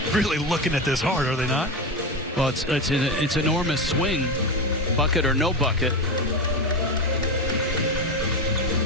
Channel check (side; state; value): both; normal; correlation 0.18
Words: looking at this hard, are they not? Well, it's an enormous swing, bucket or no bucket.